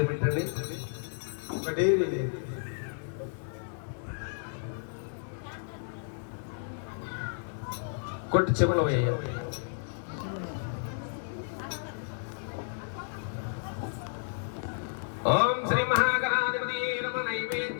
పెట్టండి. కొట్టి చెవులో వేయాలి. ఓం శ్రీ మహాగణాధిపతి నమ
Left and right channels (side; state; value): right; silent; digital silence